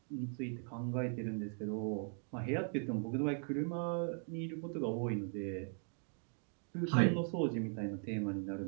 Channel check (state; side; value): silent; left; 51 dB below the other